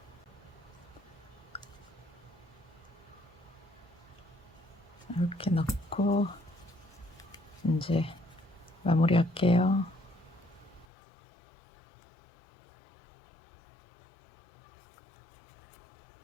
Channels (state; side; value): drops out; right; at 10.9 s